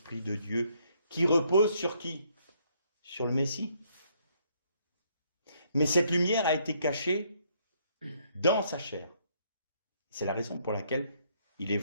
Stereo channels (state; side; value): inverted; both; correlation -0.69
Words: de Dieu, qui reposent sur qui? Sur le Messie. Mais cette lumière a été cachée dans sa chair. C'est la raison pour laquelle il est